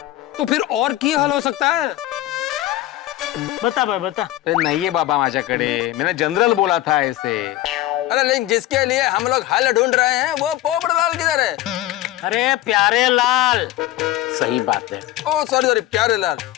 तो फिर और क्या हल हो सकता है? बता भाई, बता। अरे नहीं है बाबा माझ्याकडे, मैंने जनरल बोला था ऐसे। अरे लेकिन जिसके लिए हम लोग हल ढूंढ रहे हैं वो पोपटलाल किधर है? अरे प्यारेलाल। सही बात है। ओ सॉरी सॉरी, प्यारेलाल।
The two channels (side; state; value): right; quieter; 15.2 dB